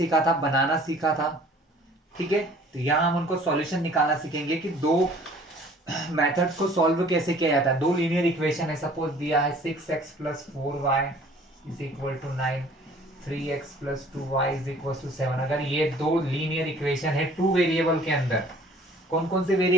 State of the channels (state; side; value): normal; both; correlation 0.52